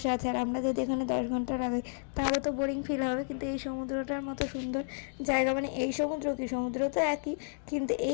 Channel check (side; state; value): right; silent; digital silence